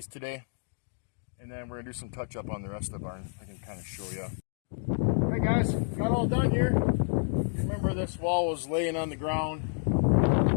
today, and then we're gonna do some touch up on the rest of the barn. I can kind of show you. All right, guys, got all done here. Remember, this wall was laying on the ground,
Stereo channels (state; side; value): silent; right; digital silence